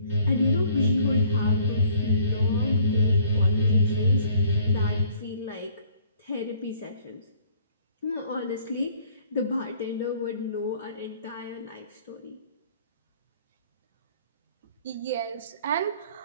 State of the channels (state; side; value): inverted; both; correlation -0.59